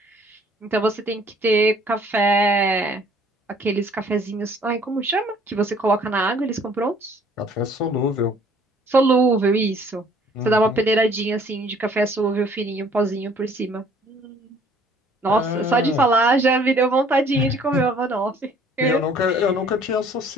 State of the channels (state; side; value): normal; both; correlation 0.57